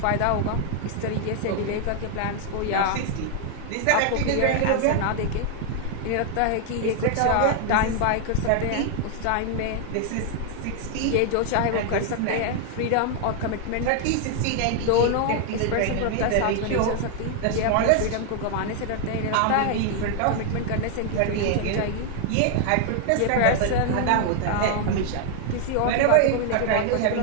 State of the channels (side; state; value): both; different; correlation 0.00